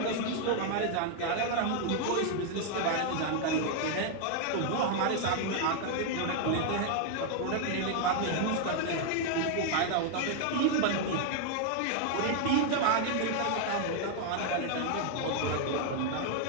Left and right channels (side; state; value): both; different; correlation 0.00